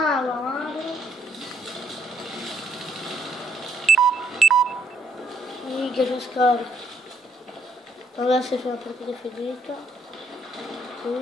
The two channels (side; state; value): both; normal; correlation 0.71